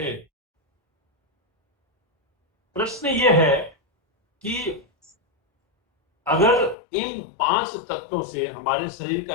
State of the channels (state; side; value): drops out; right; at 6.8 s